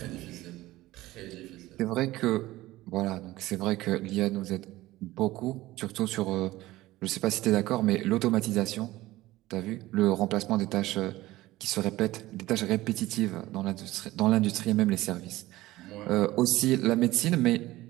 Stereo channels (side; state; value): left; quieter; 17.4 dB